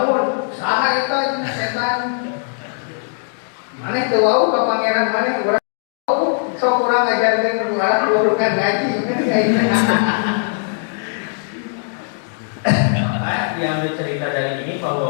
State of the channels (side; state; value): right; silent; digital silence